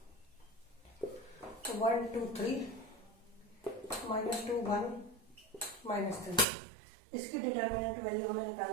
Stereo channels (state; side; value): drops out; left; at 6.5 s